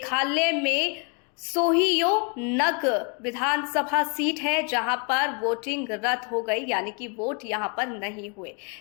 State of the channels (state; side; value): quieter; right; 33.9 dB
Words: में सोहियो नग विधानसभा सीट है जहां पर वोटिंग रद्द हो गई, यानी कि वोट यहां पर नहीं हुए।